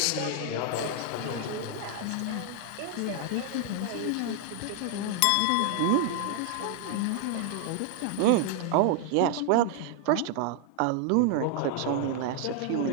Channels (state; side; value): different; both; correlation 0.00